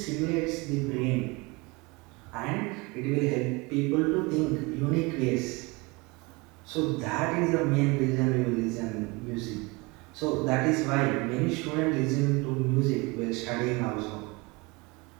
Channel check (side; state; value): left; quieter; 25.9 dB